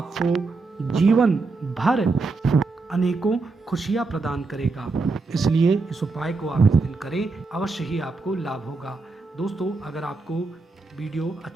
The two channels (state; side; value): quieter; left; 3.8 dB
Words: जीवन भर अनेकों खुशियाँ प्रदान करेगा। इसलिए इस उपाय को आप इस दिन करें, अवश्य ही आपको लाभ होगा। दोस्तों, अगर आपको वीडियो